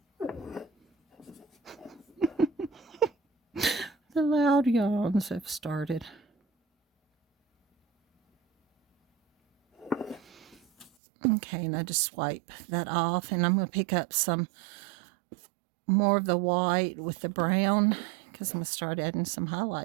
The loud yawns have started. Okay, and I just swipe that off, and I'm going to pick up some more of the white with the brown, because I'm going to start adding some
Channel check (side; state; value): left; drops out; at 10.9 s